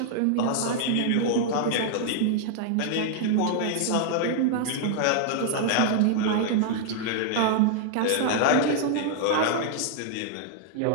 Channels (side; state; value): both; different; correlation -0.01